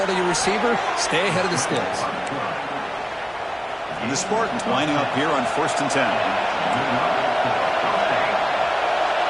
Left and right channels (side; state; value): both; identical; correlation 1.00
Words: to your receiver, stay ahead of the sticks. And the Spartans lining up here on 1st and 10.